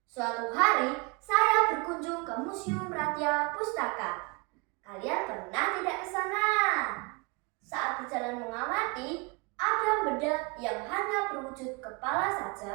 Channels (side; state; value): left; quieter; 29.3 dB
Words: Suatu hari saya berkunjung ke Museum Ratia Pustaka. Kalian pernah tidak ke sana? Saat berjalan mengamati, ada benda yang hanya berwujud kepala